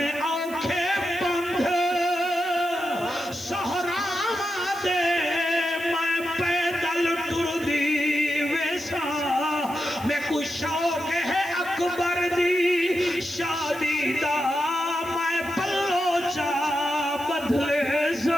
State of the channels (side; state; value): right; noise; hiss, 18 dB below the sound